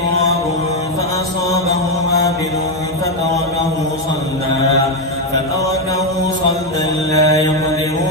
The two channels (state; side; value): normal; both; correlation 0.06